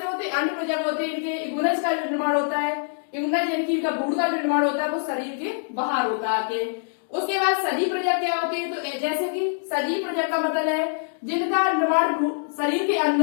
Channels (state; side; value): silent; right; digital silence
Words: होते हैं? अंड प्रजक होते हैं। इनके युग्मनज का जो निर्माण होता है, युग्मनज यानी कि इनका भ्रूण का जो निर्माण होता है वो शरीर के बाहर होता है आके। उसके बाद सजीव प्रजक क्या होते हैं? तो जैसे कि सजीव प्रजक का मतलब है जिनका निर्माण शरीर के